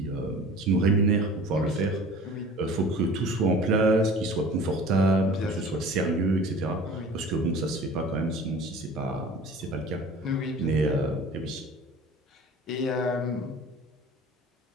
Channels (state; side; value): normal; both; correlation 0.43